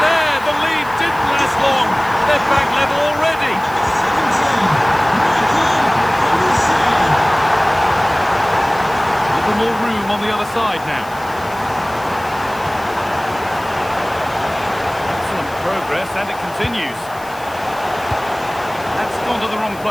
there. The lead didn't last long. They're back level already. A little more room on the other side now. Excellent progress, and it continues. That's gone to the wrong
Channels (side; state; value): left; noise; hiss, 21 dB below the sound